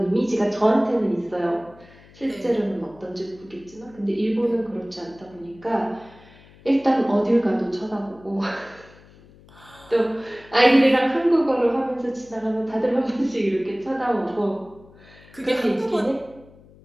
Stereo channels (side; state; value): left; noise; hum, 25 dB below the sound